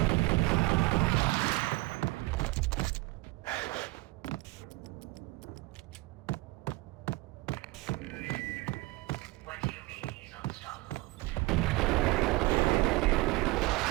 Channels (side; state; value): left; quieter; 22.3 dB